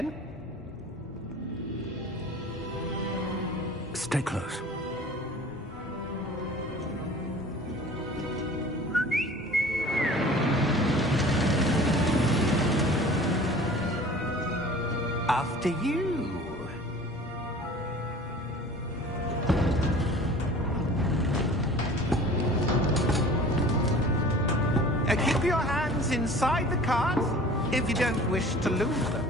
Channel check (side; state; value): both; normal; correlation 0.44